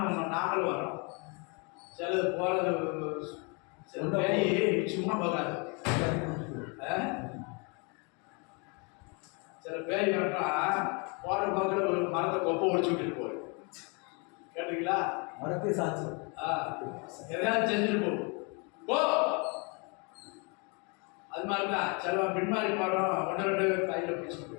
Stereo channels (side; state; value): right; quieter; 32.6 dB